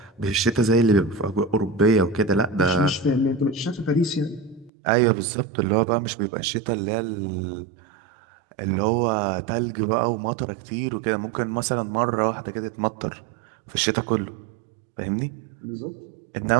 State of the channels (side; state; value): left; drops out; at 4.7 s